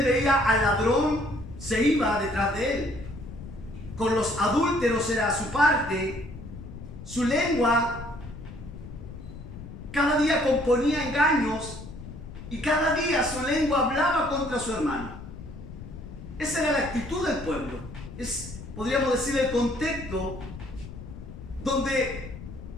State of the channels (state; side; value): noise; left; rumble, 12 dB below the sound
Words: veía al ladrón, se iba detrás de él. Con los adúlteros era su parte. Su lengua cada día componía engaños y cada día su lengua hablaba contra su hermano. Esa era la actitud del pueblo. Es, podríamos decir, el contexto donde